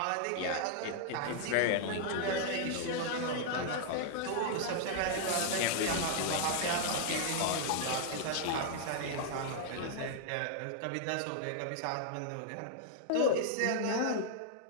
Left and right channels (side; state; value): both; different; correlation -0.01